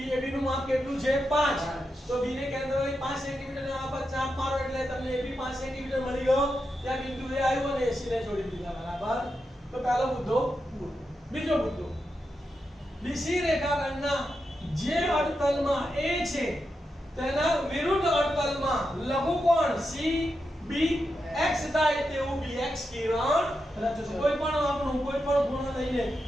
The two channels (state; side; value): normal; both; correlation 0.87